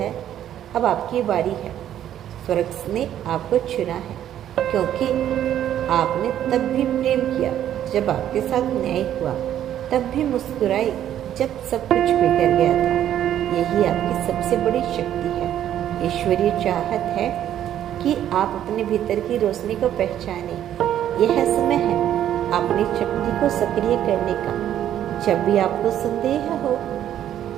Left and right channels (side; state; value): left; quieter; 11.1 dB